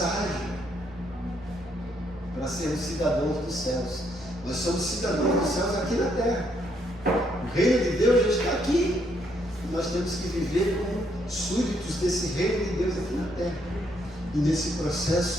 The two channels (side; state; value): both; normal; correlation 0.73